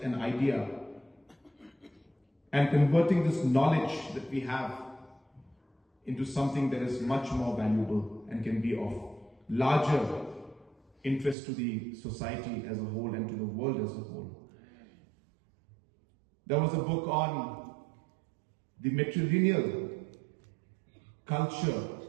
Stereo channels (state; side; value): drops out; left; at 11.4 s